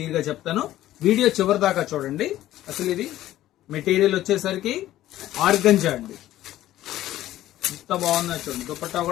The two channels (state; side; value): quieter; right; 14.1 dB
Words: గా చెప్తాను. వీడియో చివరి దాకా చూడండి. అసలు ఇది మెటీరియల్ వచ్చేసరికి ఆర్గంజా అండి. ఎంత బాగుందో చూడండి. దుపట్టా